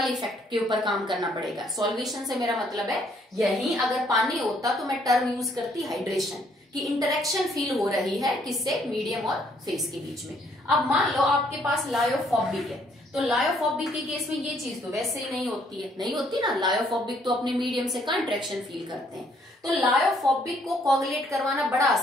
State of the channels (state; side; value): normal; both; correlation 0.67